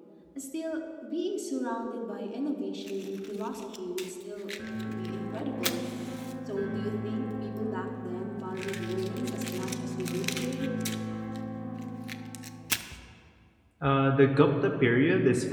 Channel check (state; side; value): identical; both; correlation 1.00